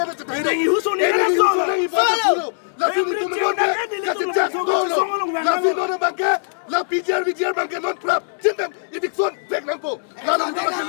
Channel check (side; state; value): right; silent; digital silence